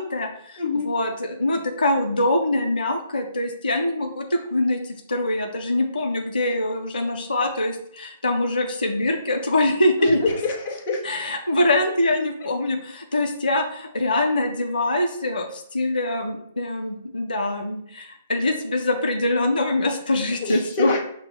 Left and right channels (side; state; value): both; inverted; correlation -0.75